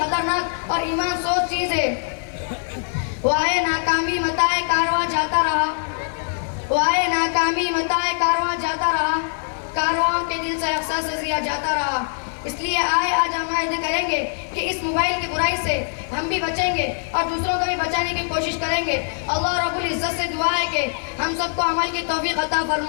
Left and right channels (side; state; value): right; silent; 58 dB below the other